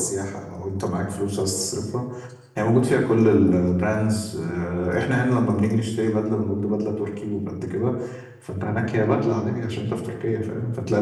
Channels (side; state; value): both; identical; correlation 1.00